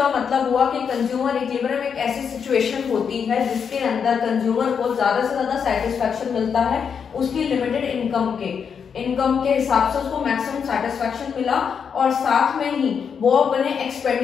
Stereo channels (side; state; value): right; quieter; 6.8 dB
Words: मतलब हुआ कि कंज्यूमर इक्विलिब्रियम एक ऐसी सिचुएशन होती है जिसके अंदर कंज्यूमर को ज्यादा से ज्यादा सेटिस्फैक्शन मिलता है उसकी लिमिटेड इनकम के हिसाब से उसको मैक्सिमम सेटिस्फैक्शन मिला और साथ में ही वो अपने